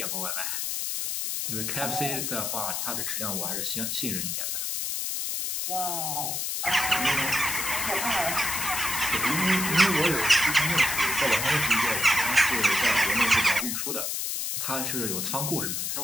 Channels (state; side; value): noise; left; hiss, 1 dB below the sound